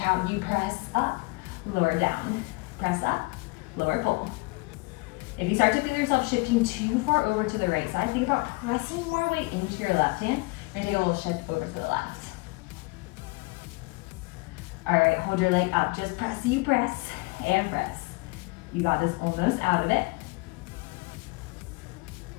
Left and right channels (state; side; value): quieter; right; 26.6 dB